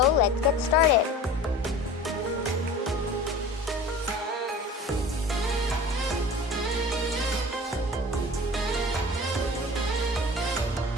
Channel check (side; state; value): both; normal; correlation 0.39